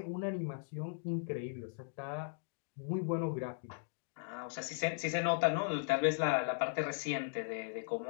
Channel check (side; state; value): right; silent; digital silence